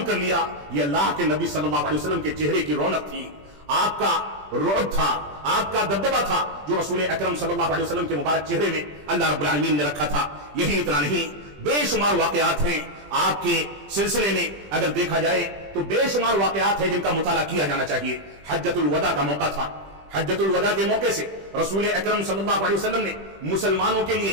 کر لیا۔ یہ اللہ کے نبی صلی اللہ علیہ وسلم کے چہرے کی رونق تھی، آپ کا رعب تھا، آپ کا دبدبہ تھا جو رسول اکرم صلی اللہ علیہ وسلم کے مبارک چہرے میں اللہ رب العالمین نے رکھا تھا۔ یہی اتنا نہیں، بے شمار واقعات ہیں آپ کے سلسلے میں، اگر دیکھا جائے تو بے شمار واقعات ہیں جن کا مطالعہ کیا جانا چاہیے۔ حجۃ الوداع کا موقع تھا، حجۃ الوداع کے موقع سے رسول اکرم صلی اللہ علیہ وسلم نے مسلمانوں کے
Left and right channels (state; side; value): late; left; 20 ms